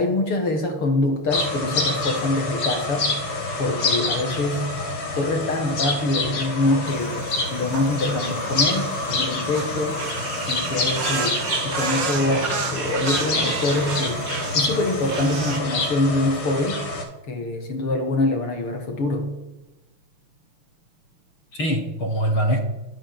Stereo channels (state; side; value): late; right; 5.6 ms